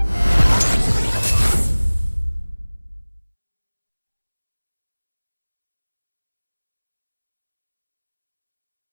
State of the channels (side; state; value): both; inverted; correlation -1.00